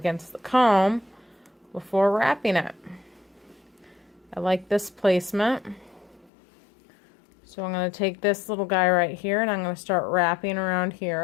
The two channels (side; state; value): right; drops out; at 6.3 s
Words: the comb before wrapping it. I like this placement. So I'm going to take this little guy right here and I'm going to start wrapping around